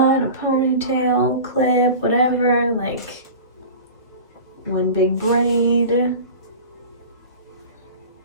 a ponytail, clip, whatever. Like one big braid.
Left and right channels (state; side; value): inverted; both; correlation -0.35